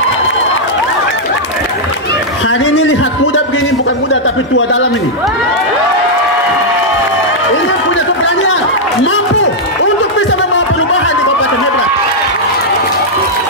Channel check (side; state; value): both; normal; correlation -0.05